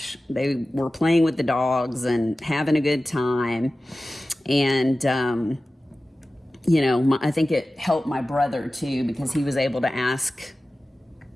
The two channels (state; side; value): normal; both; correlation 0.95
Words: they were playing with the dogs and having a good time. And, you know, I think it helped my brother too, because he was able to ask